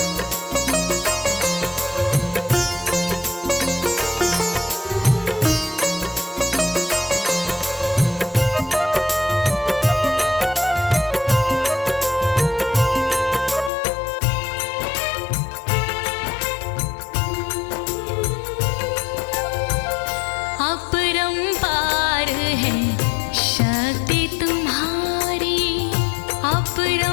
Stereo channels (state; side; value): drops out; right; at 13.7 s